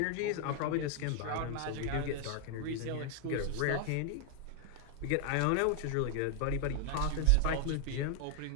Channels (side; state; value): both; different; correlation 0.00